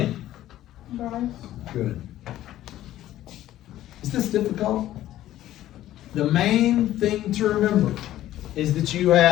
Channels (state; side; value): quieter; right; 13.7 dB